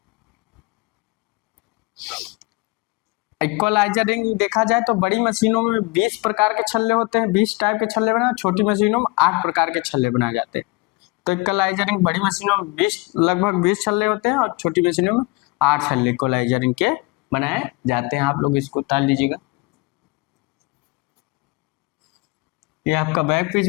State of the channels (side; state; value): right; quieter; 24.4 dB